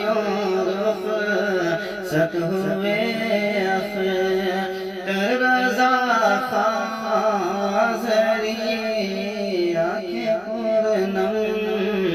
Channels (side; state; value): both; identical; correlation 1.00